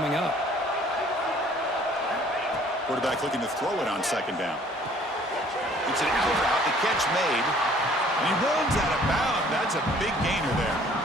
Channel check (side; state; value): both; normal; correlation 0.56